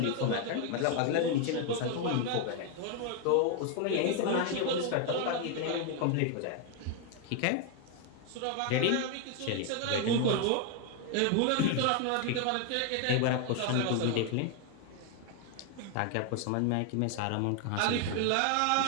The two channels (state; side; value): different; both; correlation 0.01